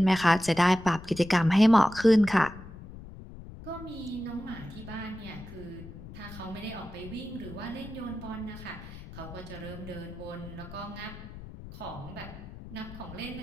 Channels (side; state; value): left; noise; rumble, 14 dB below the sound